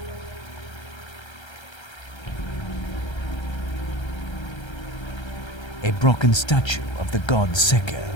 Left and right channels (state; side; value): late; right; 1.3 ms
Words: A broken statue of the god Seker.